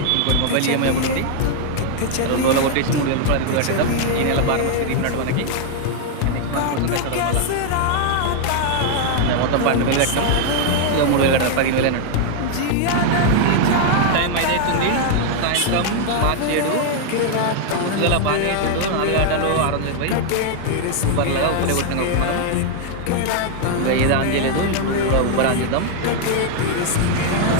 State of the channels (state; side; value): different; both; correlation 0.00